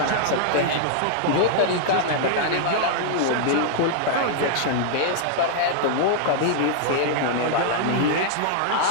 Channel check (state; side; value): different; both; correlation -0.01